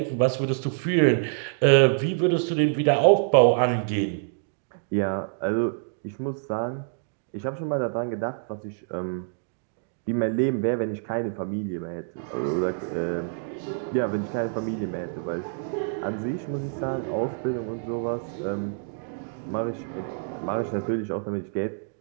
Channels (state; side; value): silent; left; digital silence